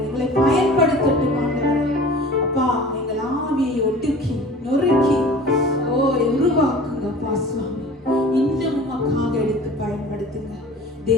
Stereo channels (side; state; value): both; normal; correlation 0.42